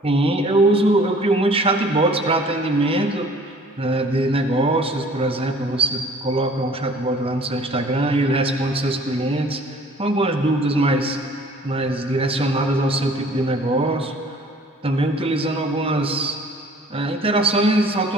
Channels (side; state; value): both; normal; correlation 0.52